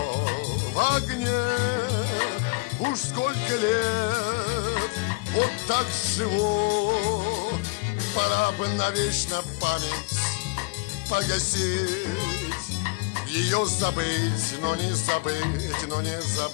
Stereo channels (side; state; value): right; quieter; 25.9 dB